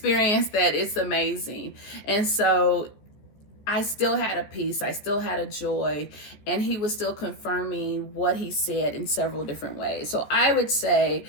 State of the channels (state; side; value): late; right; 14 ms